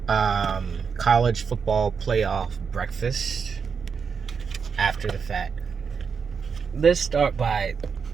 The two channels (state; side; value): quieter; left; 6.0 dB